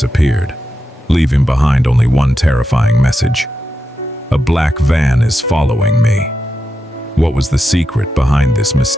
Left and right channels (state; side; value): normal; both; correlation 0.88